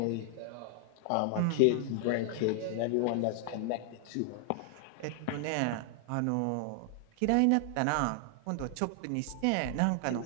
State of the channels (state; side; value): different; both; correlation 0.00